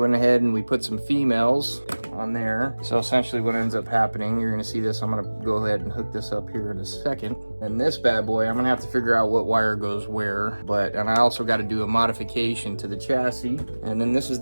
ahead and we put some females on there. So essentially what ends up happening, you're going to see this. I'm going to go ahead and hook this up here in a second. And this bad boy, I'm going to have to figure out what wire goes where. And I also got to do a modification to the chassis. And then this is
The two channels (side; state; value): both; inverted; correlation -1.00